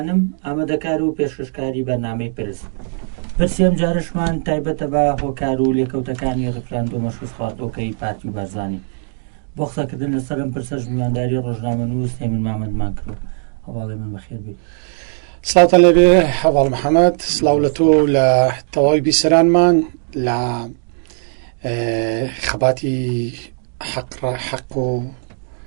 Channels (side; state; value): left; silent; 58 dB below the other